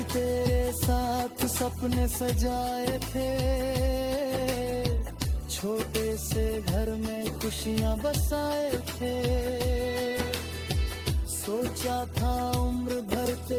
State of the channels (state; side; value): identical; both; correlation 1.00